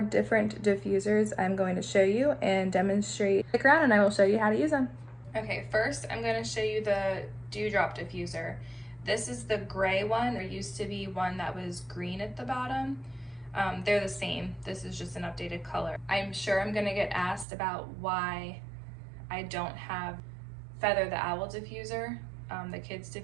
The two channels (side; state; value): left; drops out; at 17.4 s